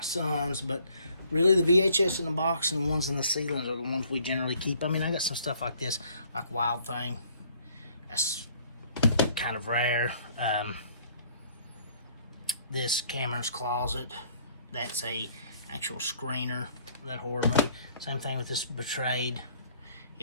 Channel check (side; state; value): both; inverted; correlation -0.60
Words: son's, but really the VHS in the box and the ones in the ceilings are the ones we generally keep. I mean, I got some stuff like this, like Wild Thing. That's kind of rare. This Cameron's Closet, that's a actual screener, that horror movie. Same thing with this Betrayed.